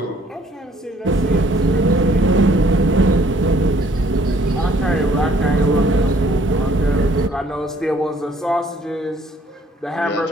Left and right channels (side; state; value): both; normal; correlation 0.61